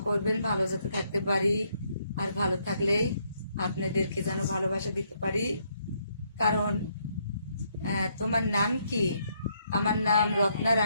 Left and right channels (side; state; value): both; inverted; correlation -0.73